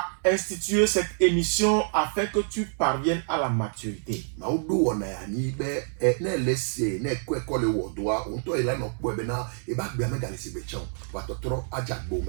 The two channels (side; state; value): left; silent; 60 dB below the other